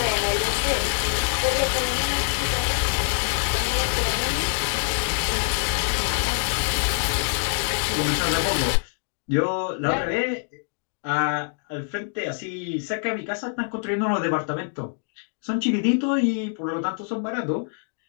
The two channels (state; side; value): silent; right; digital silence